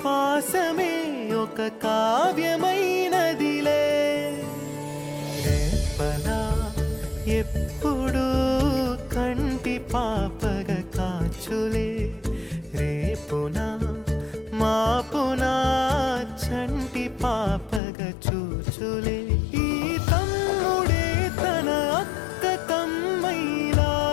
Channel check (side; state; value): right; drops out; at 17.8 s